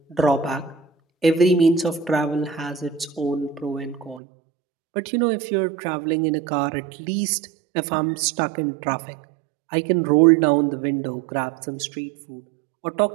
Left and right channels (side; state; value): left; drops out; at 4.2 s